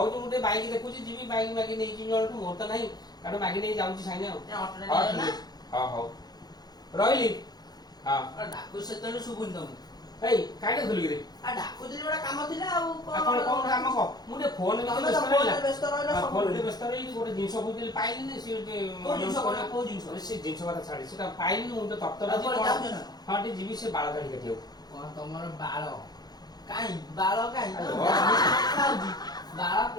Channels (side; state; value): right; late; 0.19 ms